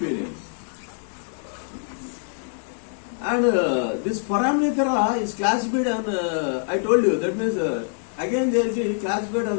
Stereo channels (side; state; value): right; silent; digital silence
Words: And this foraminifera is classified on, I told you, that means again they will be classified on